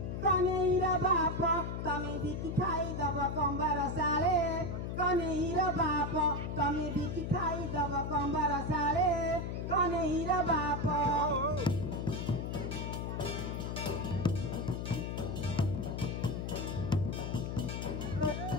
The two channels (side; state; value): left; noise; hum, 4 dB below the sound